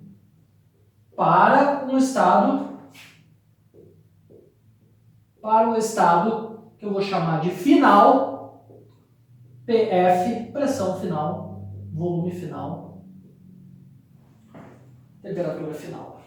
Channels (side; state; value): both; identical; correlation 1.00